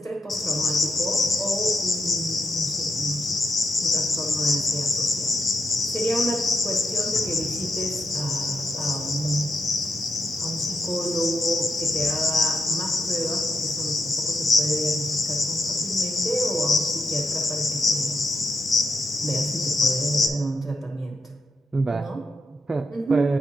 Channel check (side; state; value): both; normal; correlation 0.81